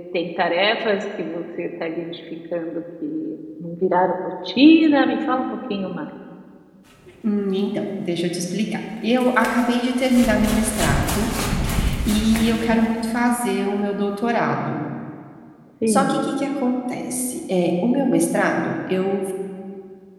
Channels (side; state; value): both; identical; correlation 1.00